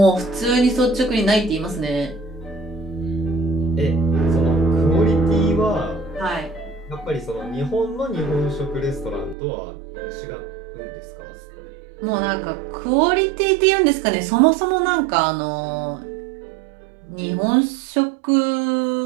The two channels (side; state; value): left; drops out; at 9.3 s